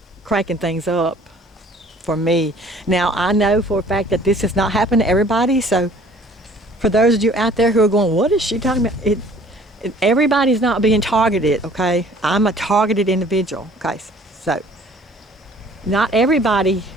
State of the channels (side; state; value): both; normal; correlation 0.53